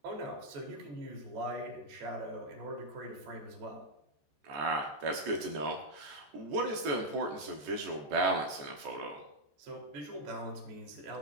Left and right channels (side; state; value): left; late; 14 ms